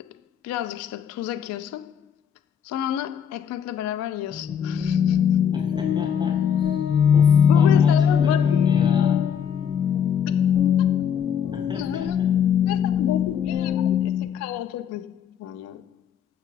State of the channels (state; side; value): quieter; right; 8.2 dB